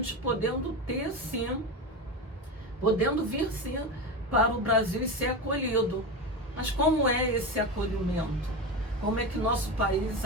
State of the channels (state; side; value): normal; both; correlation 0.20